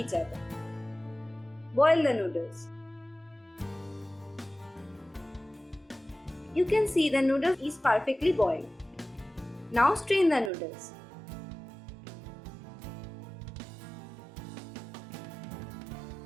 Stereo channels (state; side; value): drops out; left; at 10.5 s